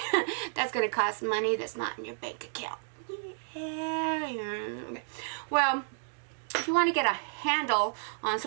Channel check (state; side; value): silent; left; digital silence